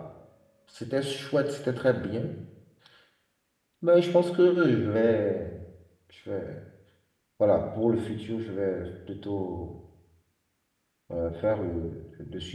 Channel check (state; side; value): identical; both; correlation 1.00